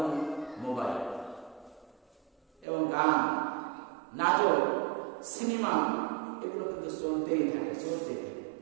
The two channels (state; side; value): drops out; left; at 2.7 s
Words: মোবাইল, এবং গান, নাটক, সিনেমা, এগুলো কিন্তু চলতেই থাকে।